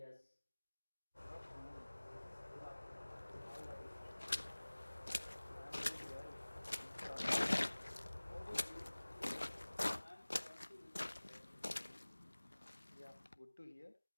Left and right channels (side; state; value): both; inverted; correlation -1.00